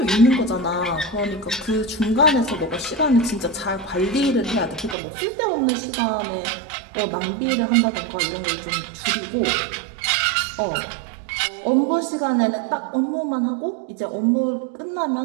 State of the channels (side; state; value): left; drops out; at 5.0 s